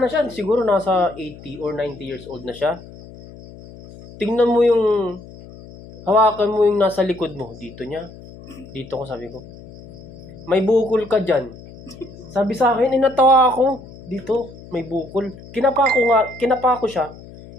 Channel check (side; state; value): left; noise; hum, 18 dB below the sound